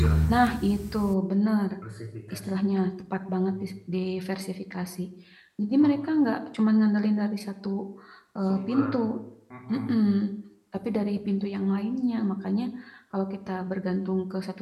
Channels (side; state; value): both; identical; correlation 1.00